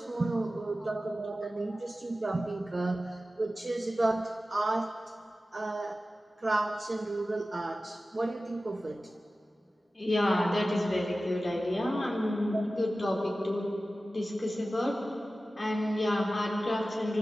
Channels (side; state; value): both; normal; correlation 0.95